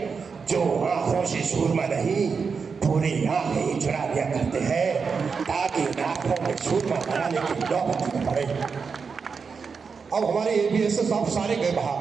जो आंखों से सूरमा नहीं, पूरे आंखें ही चुरा लिया करते हैं, ताकि आंखों में सूरमा बनाने की नौबत न पड़े। अब हमारे एबीएस साहब सारे गए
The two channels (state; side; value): quieter; left; 5.4 dB